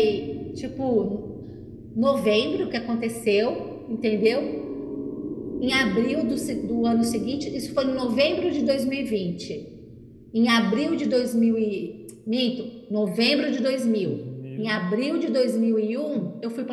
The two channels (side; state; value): both; identical; correlation 1.00